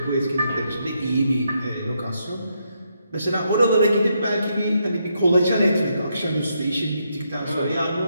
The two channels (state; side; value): inverted; both; correlation -0.79